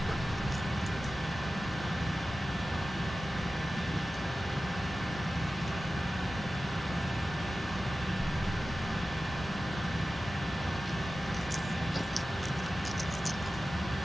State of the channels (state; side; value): normal; both; correlation 0.95